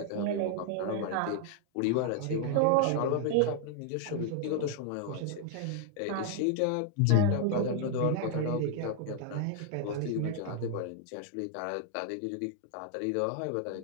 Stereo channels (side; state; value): both; different; correlation 0.00